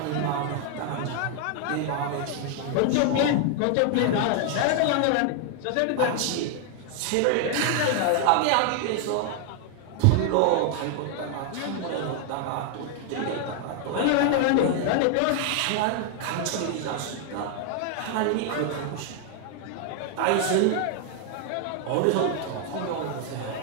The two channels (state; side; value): different; both; correlation 0.00